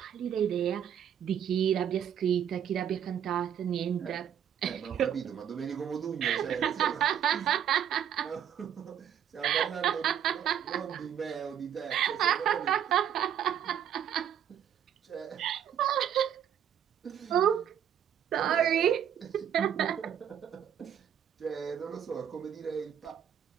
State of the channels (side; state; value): left; quieter; 9.2 dB